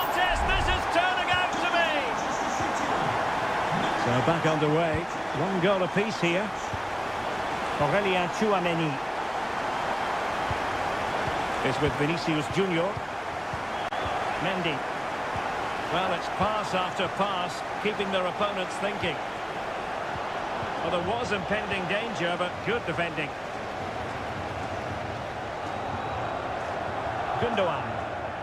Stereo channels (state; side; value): identical; both; correlation 1.00